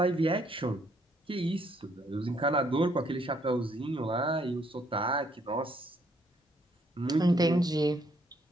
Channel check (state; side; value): normal; both; correlation 0.68